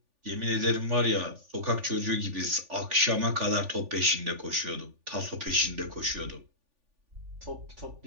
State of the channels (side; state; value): left; late; 3.5 ms